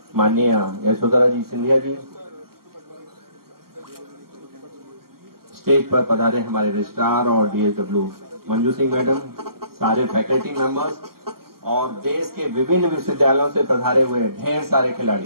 माननीय यशोधरा जी सिंधिया जी, स्टेज पर पधारे हमारे रजिस्ट्रार और डीएसडब्ल्यू मंजू सिंह मैडम, सारे फैकल्टी मेंबर्स और देश के विभिन्न विश्वविद्यालयों से पधारे हुए ढेर सारे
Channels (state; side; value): late; left; 0.93 ms